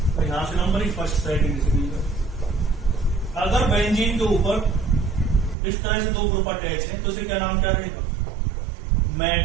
तो यहां से नंबर फर्स्ट सेटिंग से। अगर बेंजीन के ऊपर इस तरह से दो ग्रुप अटैच है तो इसे क्या नाम क्या रहेगा,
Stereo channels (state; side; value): drops out; left; at 5.6 s